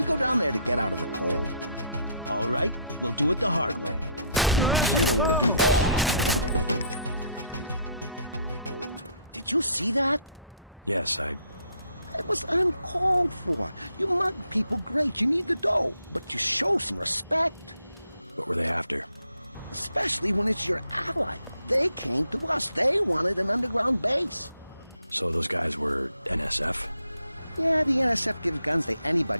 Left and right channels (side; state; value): both; inverted; correlation -0.68